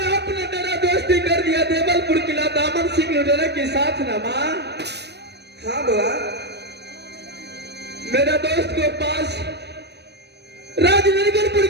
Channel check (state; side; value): late; left; 0.49 ms